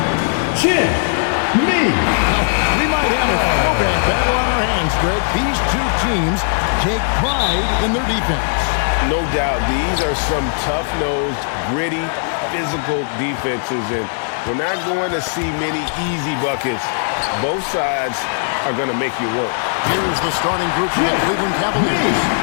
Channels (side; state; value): right; silent; digital silence